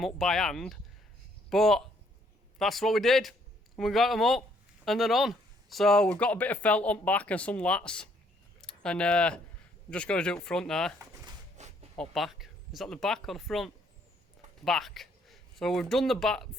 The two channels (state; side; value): normal; both; correlation 0.67